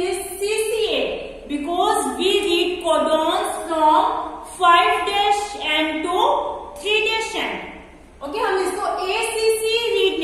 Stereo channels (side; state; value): both; identical; correlation 1.00